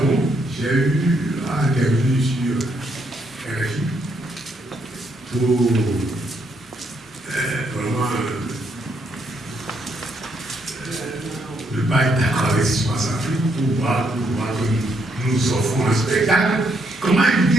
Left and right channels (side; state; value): both; normal; correlation 0.74